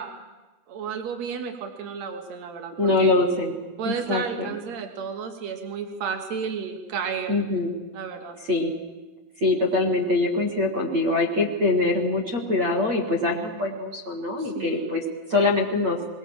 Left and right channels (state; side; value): late; left; 8.6 ms